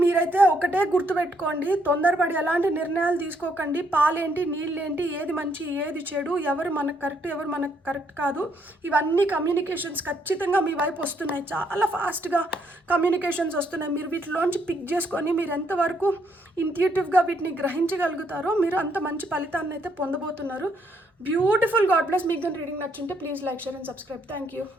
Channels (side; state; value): both; normal; correlation 0.72